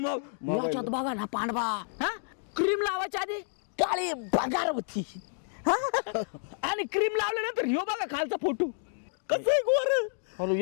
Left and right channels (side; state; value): right; silent; digital silence